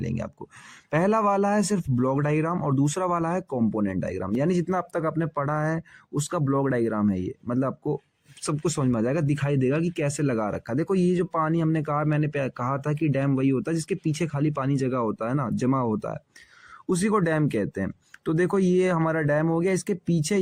आपको। पहला वाला है सिर्फ ब्लॉक डायग्राम और दूसरा वाला है कंपोनेंट डायग्राम, यानी जितना अब तक आपने पढ़ा है उसका ब्लॉक डायग्राम है ये। मतलब आपको सब कुछ समझ में आ जाएगा, दिखाई देगा कि कैसे लगा रखा है। देखो ये जो पानी हमने कहा, मैंने कहा था कि डैम वही होता है जिसके पीछे खाली पानी जगह होता है ना, जमा होता है, उसी को डैम कहते हैं। तो देखो ये हमारा डैम हो गया, इसके पीछे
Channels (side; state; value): both; identical; correlation 1.00